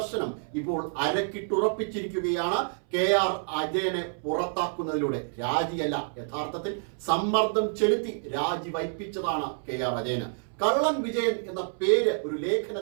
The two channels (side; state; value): left; silent; 59 dB below the other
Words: ഇപ്പോൾ അരക്കിട്ടുറപ്പിച്ചിരിക്കുകയാണ് KR അജയനെ പുറത്താക്കുന്നതിലൂടെ. രാജിയല്ല, യഥാർത്ഥത്തിൽ സമ്മർദ്ദം ചെലുത്തി രാജി വയ്പ്പിച്ചതാണ് KR അജയന്. കള്ളൻ വിജയൻ എന്ന പേര് ഒരു